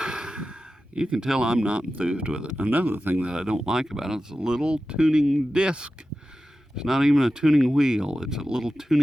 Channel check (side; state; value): both; normal; correlation 0.93